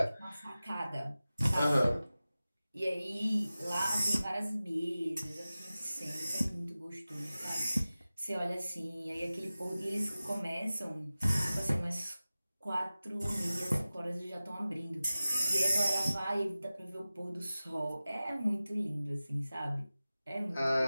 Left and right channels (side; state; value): both; inverted; correlation -0.96